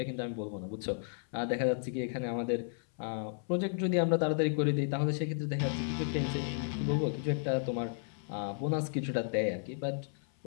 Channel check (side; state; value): right; silent; 55 dB below the other